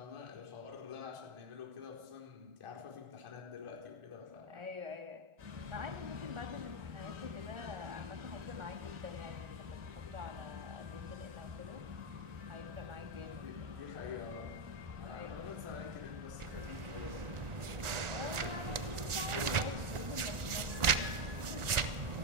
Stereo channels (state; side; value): late; left; 1.4 ms